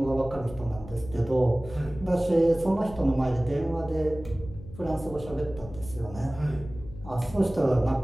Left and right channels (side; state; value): left; noise; hum, 15 dB below the sound